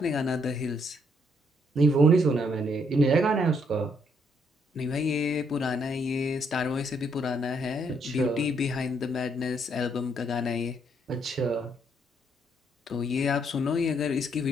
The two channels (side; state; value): both; normal; correlation 0.72